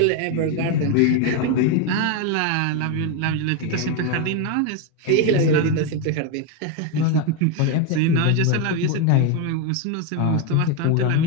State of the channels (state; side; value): different; both; correlation 0.02